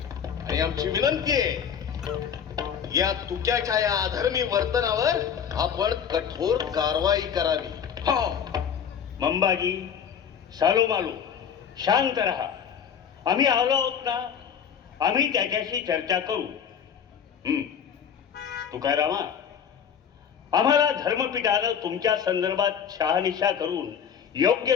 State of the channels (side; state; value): right; quieter; 7.8 dB